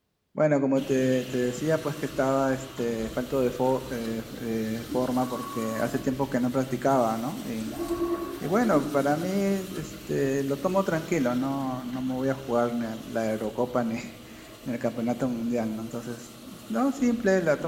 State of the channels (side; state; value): both; identical; correlation 1.00